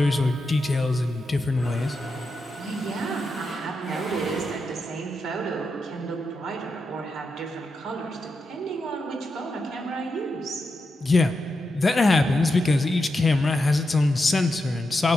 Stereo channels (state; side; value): normal; both; correlation 0.87